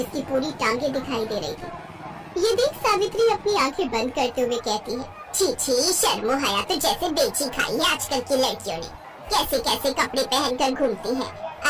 पूरी टांगे दिखाई दे रही थी। ये देख सावित्री अपनी आंखें बंद करते हुए कहती है, छी छी, शर्मो हया तो जैसे बेची खाई है आजकल की लड़कियों ने। कैसे कैसे कपड़े पहनकर घूमती हैं।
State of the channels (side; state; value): both; identical; correlation 1.00